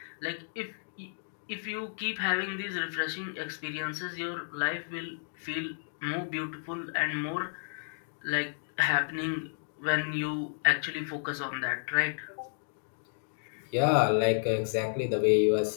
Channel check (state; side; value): silent; right; digital silence